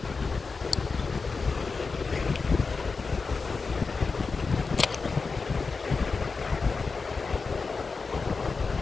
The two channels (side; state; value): right; quieter; 4.5 dB